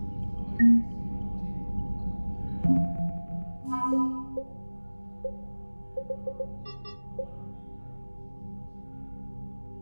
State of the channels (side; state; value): both; inverted; correlation -1.00